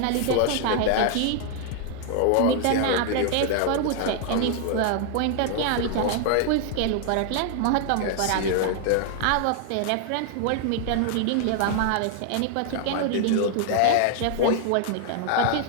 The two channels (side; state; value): both; different; correlation 0.00